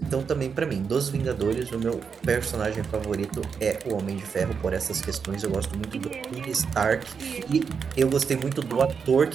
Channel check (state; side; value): quieter; left; 6.1 dB